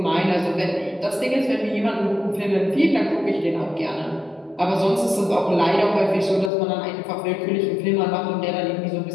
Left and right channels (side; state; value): right; drops out; at 6.5 s